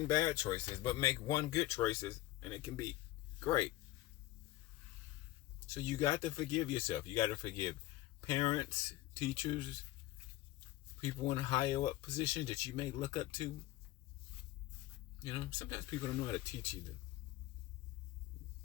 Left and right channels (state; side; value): quieter; right; 16.4 dB